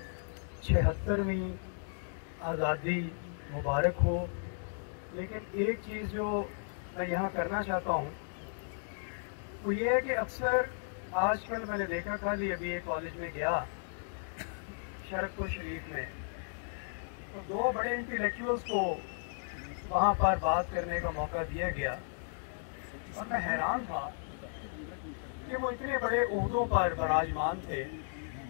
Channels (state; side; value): silent; right; digital silence